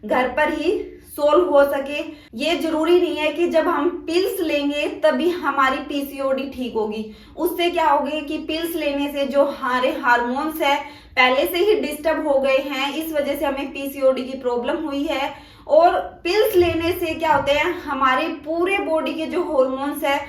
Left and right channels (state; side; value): identical; both; correlation 1.00